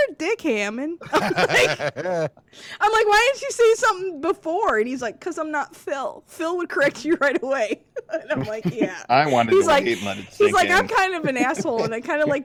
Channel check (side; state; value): both; identical; correlation 1.00